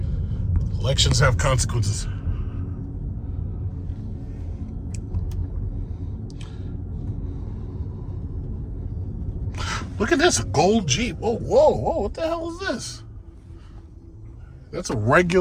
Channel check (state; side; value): identical; both; correlation 1.00